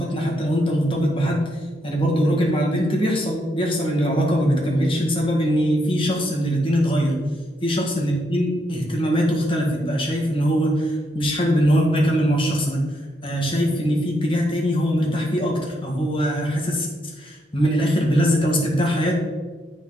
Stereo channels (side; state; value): both; normal; correlation 0.78